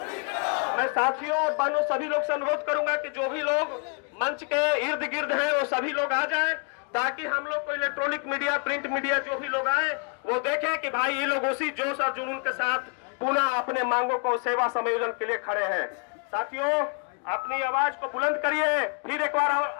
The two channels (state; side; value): quieter; right; 38.9 dB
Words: करो। मैं साथियों और बहनों सभी लोग से अनुरोध करूंगा कि जो भी लोग मंच के इर्द गिर्द हैं वो सभी लोग आ जाएं, ताकि हम लोग को इलेक्ट्रॉनिक मीडिया, प्रिंट मीडिया जो भी लोग आए वो देखें कि भाई ये लोग उसी जोश और जुनून के साथ पुनः अपने मांगों को सेवा संयोजन के लिए खड़े हैं। साथियों, अपनी आवाज को बुलंद करिए, फिर एक बार